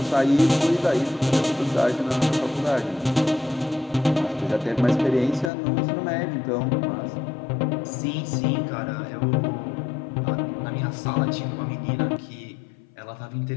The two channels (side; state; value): right; drops out; at 5.5 s